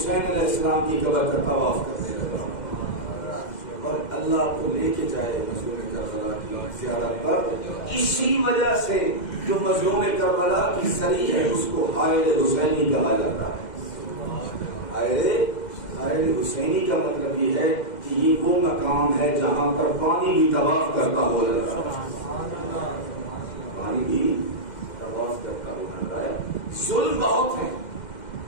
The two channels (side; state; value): right; late; 2.1 ms